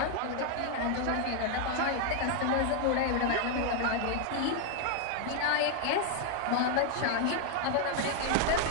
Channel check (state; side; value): different; both; correlation 0.01